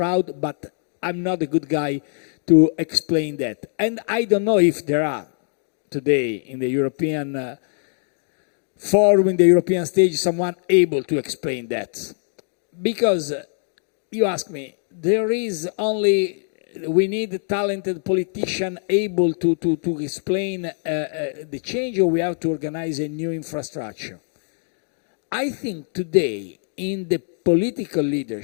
but I'm not a good guy to explain that. And I don't know if there are today in the European forum, in the European stage, someone able to explain that. Because you ask me, there is only, we need a talented politician able to explain the change, or we have to organize a new infrastructure. I think today in the political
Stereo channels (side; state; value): right; silent; 58 dB below the other